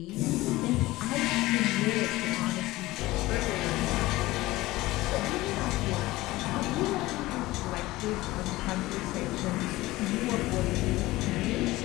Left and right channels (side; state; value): right; quieter; 18.6 dB